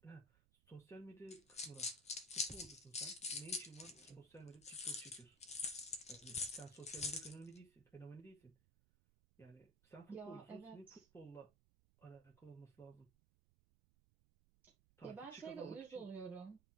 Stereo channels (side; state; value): right; noise; rumble, 28 dB below the sound